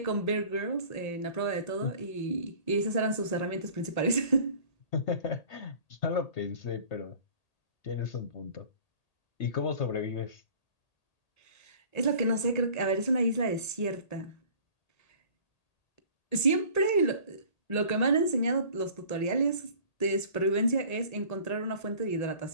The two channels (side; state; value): right; late; 1.8 ms